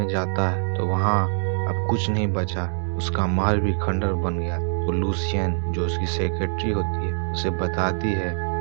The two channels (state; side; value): silent; left; digital silence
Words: जाता है तो वहाँ अब कुछ नहीं बचा, उसका महल भी खंडर बन गया। तो लूसियन जो उसकी सेक्रेटरी होती है उसे बताती है